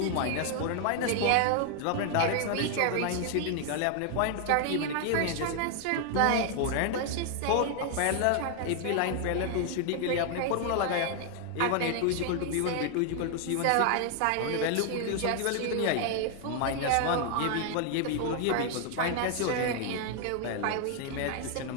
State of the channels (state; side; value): different; both; correlation 0.00